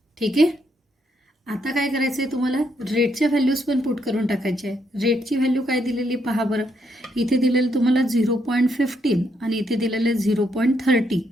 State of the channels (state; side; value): normal; both; correlation 0.76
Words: ठीक आहे. आता काय करायचं आहे तुम्हाला? रेटच्या व्हॅल्यूज पण पुट करून टाकायचे आहे. रेटची व्हॅल्यू काय दिलेली पहा बरं. इथे दिलेलं तुम्हाला 0.15 आणि इथे दिलेलं 0.30,